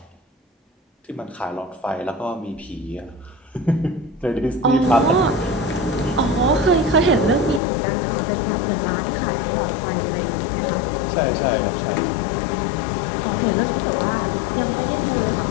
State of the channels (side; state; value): right; drops out; at 7.6 s